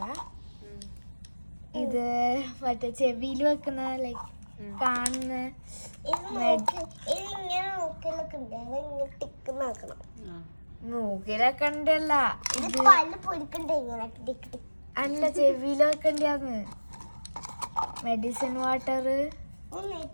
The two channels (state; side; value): inverted; both; correlation -1.00